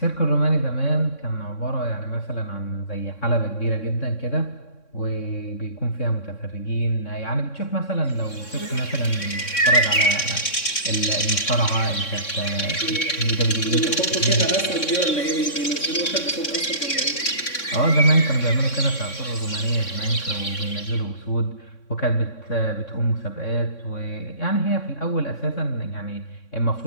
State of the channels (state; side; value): late; right; 3.6 ms